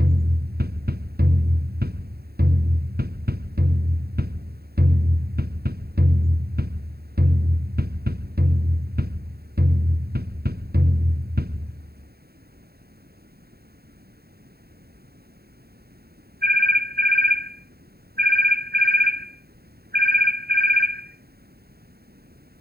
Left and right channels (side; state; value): left; late; 0.46 ms